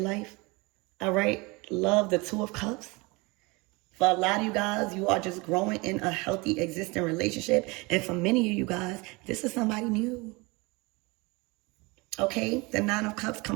life. All right? Love, the Two of Cups. For a lot of you guys, you are just growing in a healthy, existing relationship. And for many of you guys, this is somebody new. Okay? The Nine of Cups,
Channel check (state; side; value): quieter; left; 25.8 dB